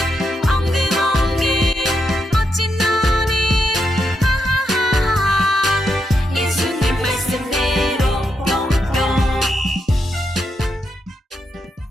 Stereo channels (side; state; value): both; normal; correlation 0.82